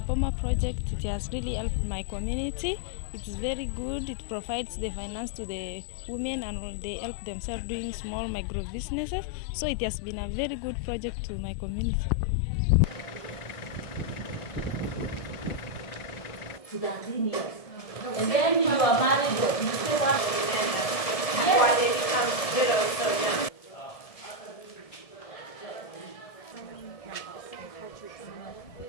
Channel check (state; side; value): late; right; 1.7 ms